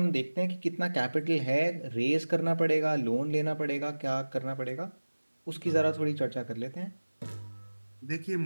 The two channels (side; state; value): both; inverted; correlation -1.00